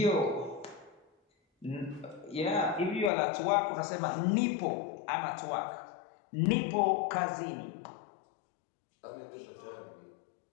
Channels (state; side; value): drops out; right; at 3.1 s